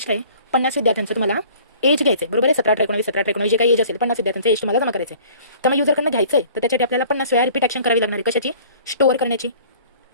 काय, 50 विद्यार्थ्यांचं तुम्हाला एज घ्यायचं आहे. बरोबर आहे, 17 18 19 17 19 जे काही एज असेल 50 विद्यार्थ्यांचं एज तुम्हाला जमा करायचं आहे. तर मग युजरकडनं घ्यायचं आहे, तर त्याच्यासाठी आपल्याला 50 वेळा रिपीट ॲक्शन करावी लागणार आहे. कशाची, स्टोअर करण्याची.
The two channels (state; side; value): inverted; both; correlation -0.50